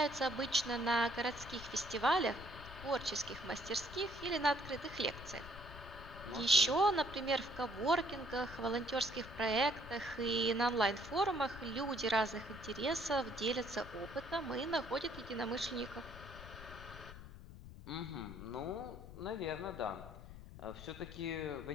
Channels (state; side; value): noise; left; rumble, 14 dB below the sound